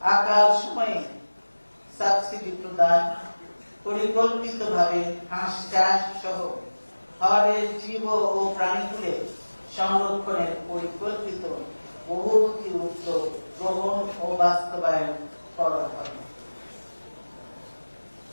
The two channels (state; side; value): inverted; both; correlation -1.00